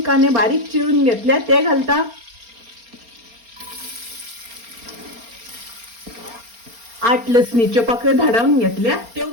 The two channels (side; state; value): left; late; 4.3 ms